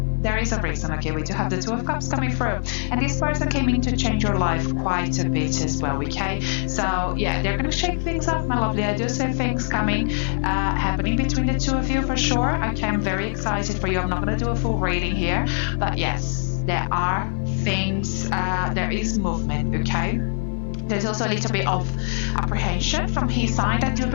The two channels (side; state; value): right; silent; 56 dB below the other